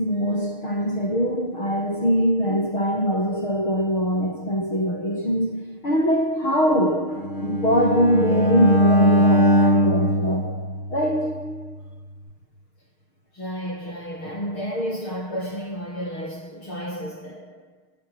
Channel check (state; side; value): late; right; 6.5 ms